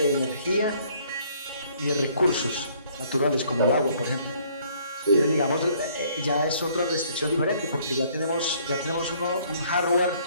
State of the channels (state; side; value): inverted; both; correlation -0.62